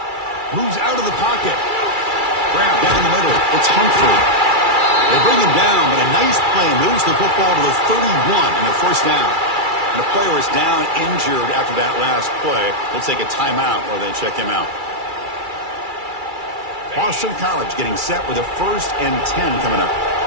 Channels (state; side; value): late; left; 2.3 ms